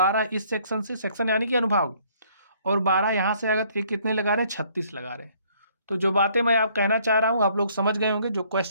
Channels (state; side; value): inverted; both; correlation -0.62